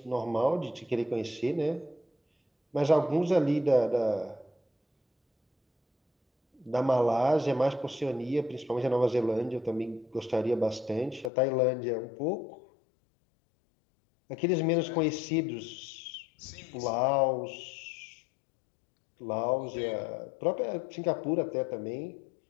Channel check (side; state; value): right; drops out; at 11.3 s